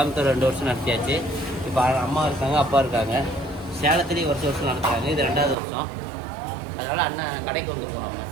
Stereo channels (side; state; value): left; drops out; at 5.6 s